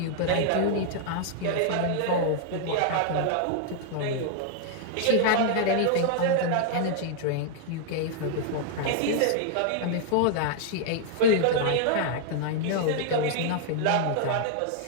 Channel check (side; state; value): both; different; correlation -0.01